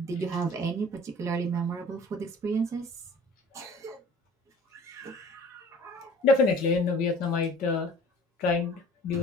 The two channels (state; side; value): normal; both; correlation 0.47